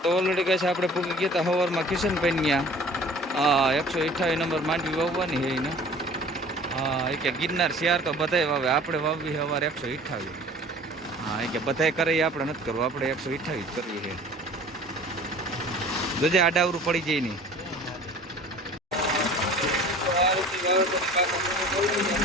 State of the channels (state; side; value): normal; both; correlation 0.46